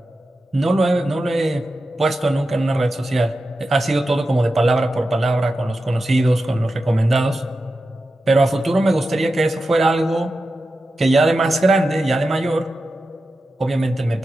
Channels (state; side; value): normal; both; correlation 0.91